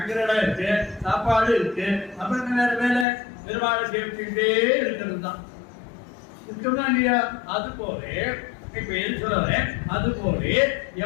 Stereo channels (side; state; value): right; drops out; at 3.1 s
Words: இடம் இருக்கு, சாப்பாடு இருக்கு, அப்ப என்ன வேற வேலை? பெருமாளை சேவிச்சுட்டே இருக்கிறது தான் இருக்குதா இல்லையா? அது போல இப்ப எது சொல்றேன், அது போல